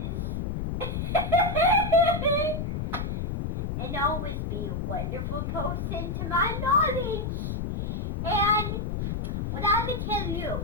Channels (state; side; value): noise; left; rumble, 2 dB below the sound